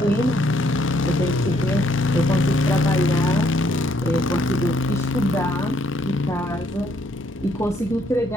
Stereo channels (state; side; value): normal; both; correlation 0.69